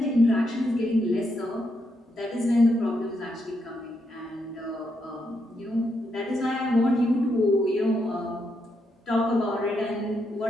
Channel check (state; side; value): normal; both; correlation 0.80